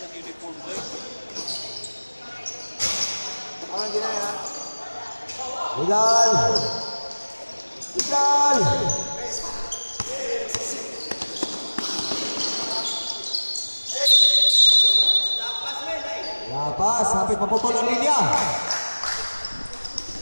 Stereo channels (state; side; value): inverted; both; correlation -1.00